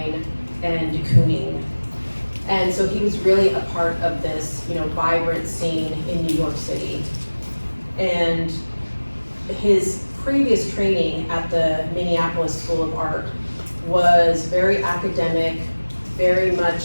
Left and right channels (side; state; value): both; inverted; correlation -1.00